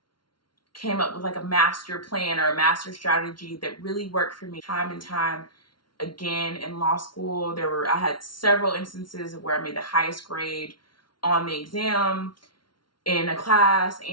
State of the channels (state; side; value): late; right; 0.72 ms